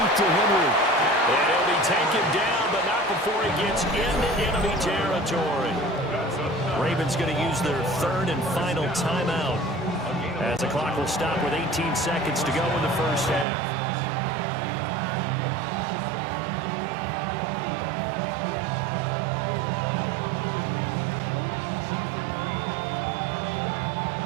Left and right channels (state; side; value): drops out; left; at 13.5 s